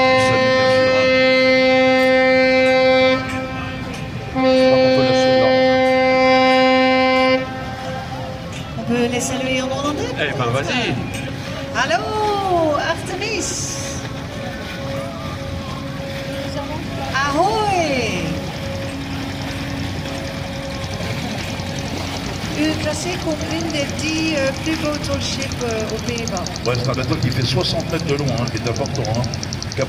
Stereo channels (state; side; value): identical; both; correlation 1.00